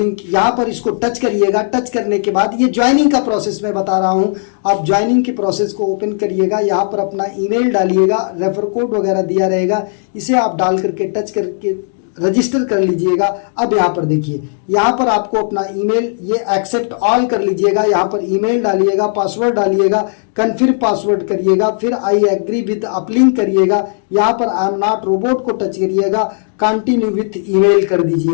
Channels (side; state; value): right; silent; digital silence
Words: यहां पर इसको टच करिएगा। टच करने के बाद ये ज्वाइनिंग का प्रोसेस मैं बता रहा हूं, आप ज्वाइनिंग के प्रोसेस को ओपन करिएगा। यहां पर अपना ईमेल डालिएगा, रेफर कोड वगैरह दिया रहेगा, इसे आप डाल करके टच करके रजिस्टर कर लीजिएगा। अब यहाँ पर देखिए यहाँ पर आपको अपना ईमेल ये एक्सेप्ट ऑल कर लीजिएगा। यहाँ पर ईमेल डालिएगा, पासवर्ड डालिएगा, कन्फर्म पासवर्ड करिएगा, फिर आई एग्री विद अपलिंक करिएगा। यहाँ पर आई एम नॉट रोबोट को टच करिएगा, कंटिन्यू विथ ईमेल कर